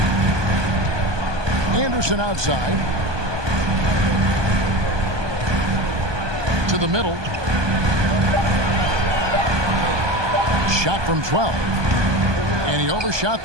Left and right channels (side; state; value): left; late; 1.2 ms